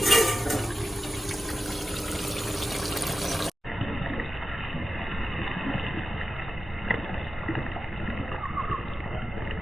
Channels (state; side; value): normal; both; correlation 0.93